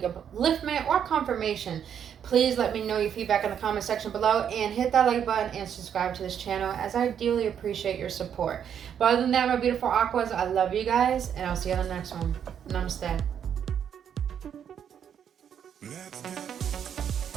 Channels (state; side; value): quieter; left; 8.6 dB